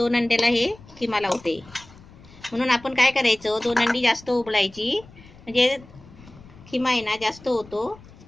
अंड्याला हे खिमा लावते. म्हणून आपण काय करायचं, 2 अंडी जास्त उबळायची, म्हणजे खिमा आहे ना जास्त होतो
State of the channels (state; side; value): noise; left; rumble, 22 dB below the sound